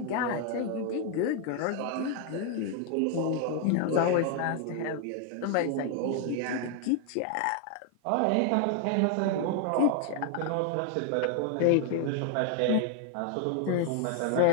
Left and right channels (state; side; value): different; both; correlation 0.00